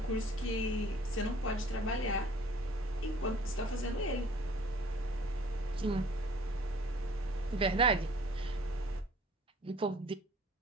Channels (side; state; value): both; normal; correlation 0.53